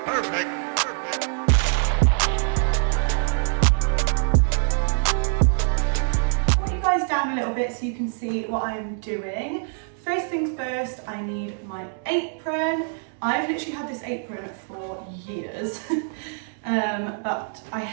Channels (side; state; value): left; silent; digital silence